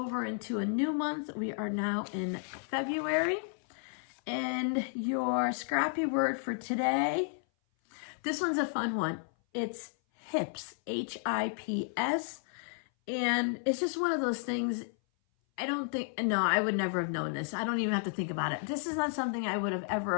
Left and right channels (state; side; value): silent; right; 56 dB below the other